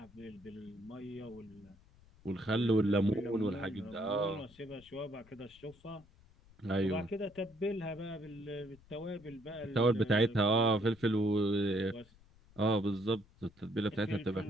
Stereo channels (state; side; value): noise; left; rumble, 26 dB below the sound